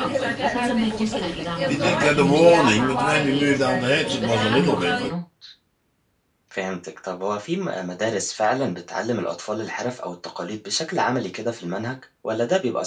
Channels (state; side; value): identical; both; correlation 1.00